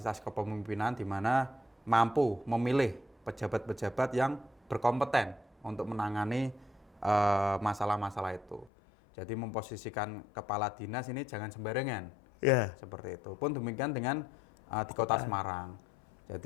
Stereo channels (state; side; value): drops out; right; at 8.7 s